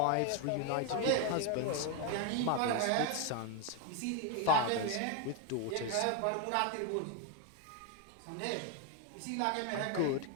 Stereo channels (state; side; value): different; both; correlation 0.01